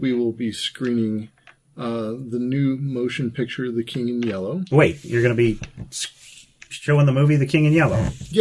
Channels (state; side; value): identical; both; correlation 1.00